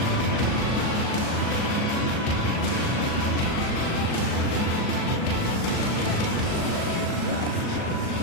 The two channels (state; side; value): late; right; 38 ms